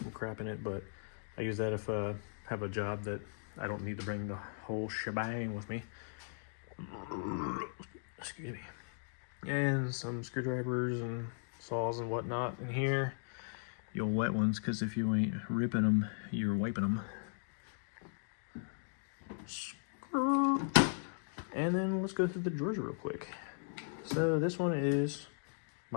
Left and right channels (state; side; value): silent; right; digital silence